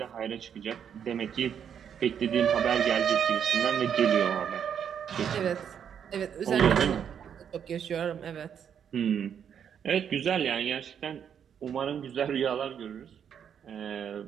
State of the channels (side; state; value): left; quieter; 8.2 dB